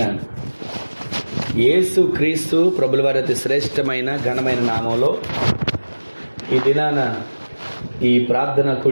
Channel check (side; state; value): both; inverted; correlation -1.00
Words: యేసు క్రీస్తు ప్రభుల వారి అతి శ్రేష్టమైన ఘనమైన నామంలో ఈ దినాన ఈ ప్రార్థన